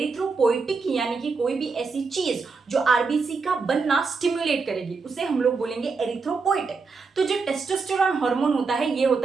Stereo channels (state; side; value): quieter; left; 4.6 dB